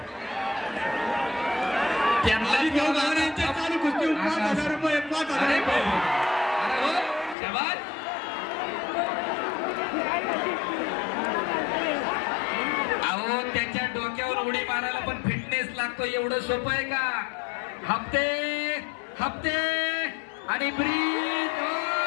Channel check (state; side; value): drops out; right; at 7.4 s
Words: त्यांना चालू कुस्ती 5,000 रुपये. 5,000 रुपये. शाबास. अहो त्याच्या डोक्यावर उडी मारायला पण फिटनेस लागतो. एवढं सोपं आहे का. हप्ते हप्ते आणि ब्रीज.